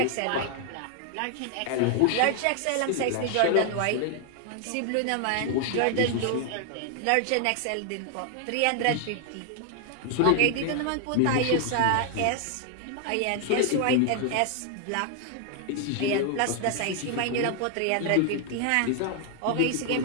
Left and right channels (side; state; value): both; different; correlation 0.00